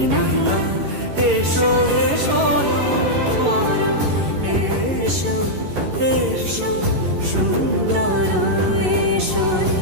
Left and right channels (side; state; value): left; late; 11 ms